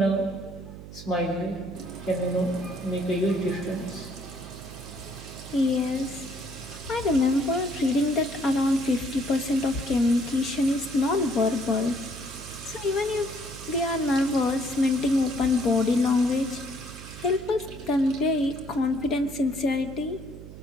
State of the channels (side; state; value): right; noise; hum, 14 dB below the sound